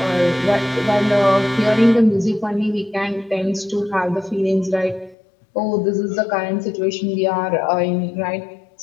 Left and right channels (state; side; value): drops out; right; at 5.2 s